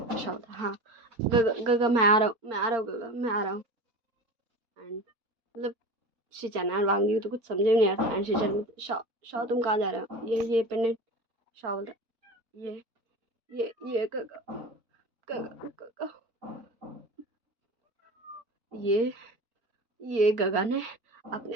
शाओ था हाँ गगा मैं आ रहा हूँ गगा मैं आ रहा हूँ। एंड मतलब शीचैन एंड वांग जी तो कुछ समझ में नहीं आता एंड शीचैन शाओ शाओ तुम कहाँ जा रहे हो? ये पेंडेंट। शाओ बोलता ये ये गगा गगा गगा ये ये गगा ने अपने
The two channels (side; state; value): left; late; 4.4 ms